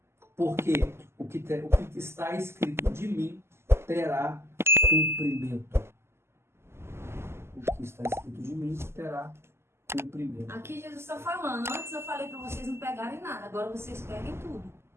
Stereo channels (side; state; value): left; late; 0.12 ms